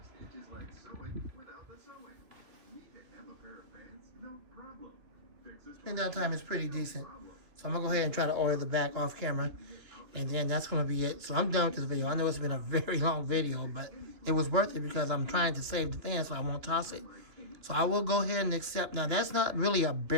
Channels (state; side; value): late; left; 2.7 ms